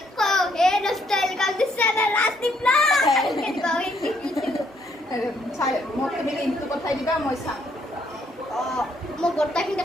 কওঁ এই ষ্টাইল কাম দিছ চেনেল Rasdeep ব্লগ। আৰু চাই মোক তুমি লিংকটো পঠাই দিবা মই চাম। মই গোটেইখিনি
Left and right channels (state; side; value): normal; both; correlation 0.71